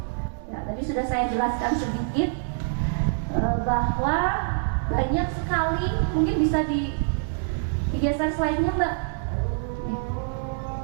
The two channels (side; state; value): left; silent; digital silence